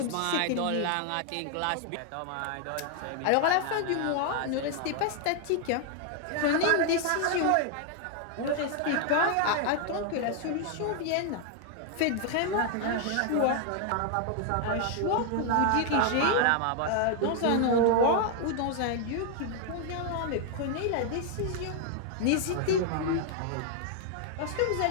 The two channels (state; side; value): different; both; correlation 0.00